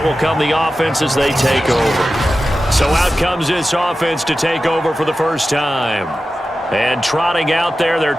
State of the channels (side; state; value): both; normal; correlation 0.93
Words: will come the offense as they take over. So out comes this offense to take over for the first time. And trotting out there, their